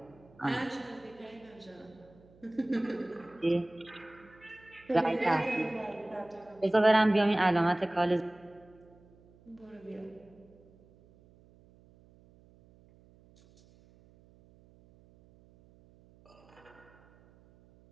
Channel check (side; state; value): right; noise; hum, 27 dB below the sound